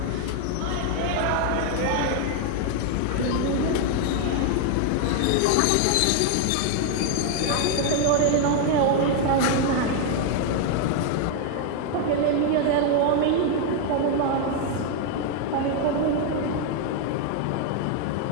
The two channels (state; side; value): different; both; correlation 0.00